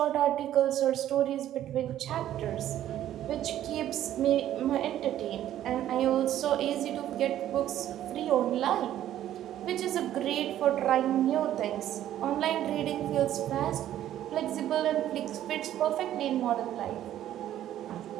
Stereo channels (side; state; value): left; quieter; 12.1 dB